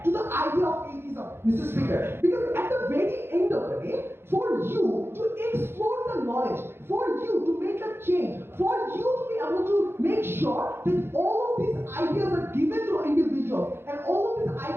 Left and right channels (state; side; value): late; left; 0.11 ms